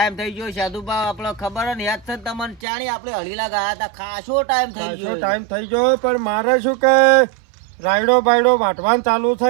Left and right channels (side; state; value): left; drops out; at 2.6 s